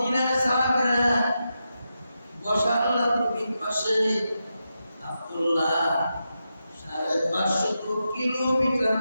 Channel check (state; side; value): inverted; both; correlation -0.88